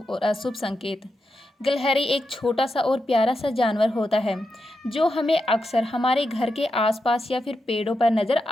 और अशुभ संकेत। गिलहरी एक छोटा सा और प्यारा सा जानवर होता है जो हमें अक्सर हमारे घर के आसपास या फिर पेड़ों पर नजर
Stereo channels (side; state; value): both; normal; correlation 0.87